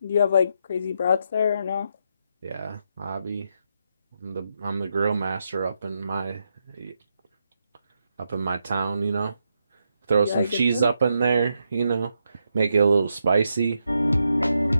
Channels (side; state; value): both; inverted; correlation -0.81